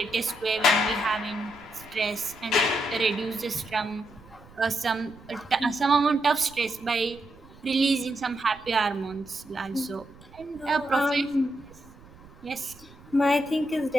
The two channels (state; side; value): noise; right; rumble, 22 dB below the sound